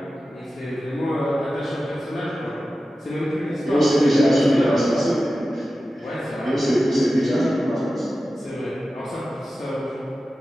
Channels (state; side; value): normal; both; correlation 0.94